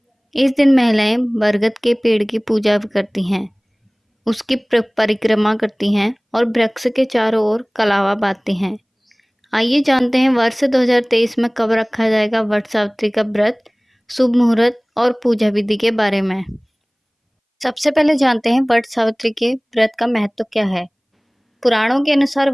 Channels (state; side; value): identical; both; correlation 1.00